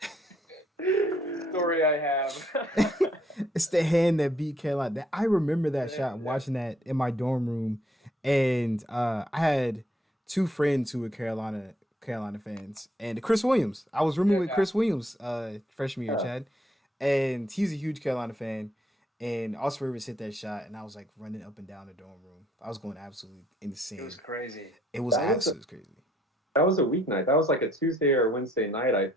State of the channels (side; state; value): both; normal; correlation 0.67